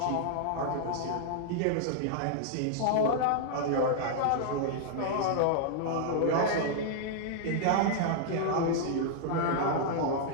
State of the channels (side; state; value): both; different; correlation -0.01